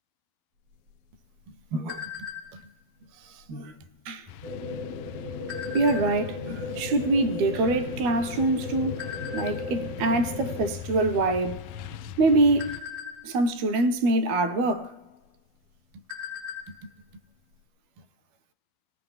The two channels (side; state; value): left; late; 12 ms